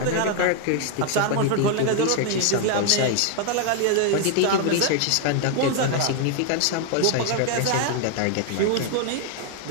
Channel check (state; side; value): different; both; correlation 0.00